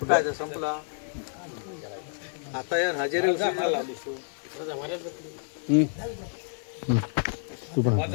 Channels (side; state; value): right; silent; digital silence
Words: संपला आता यार हजेरी उचलला लावलीस तू.